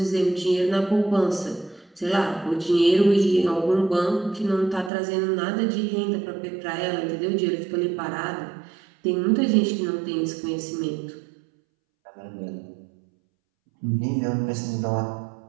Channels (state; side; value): drops out; left; at 4.9 s